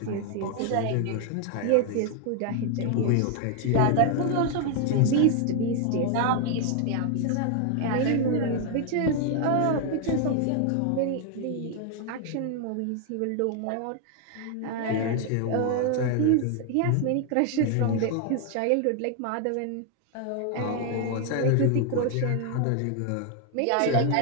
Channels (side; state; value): both; different; correlation 0.00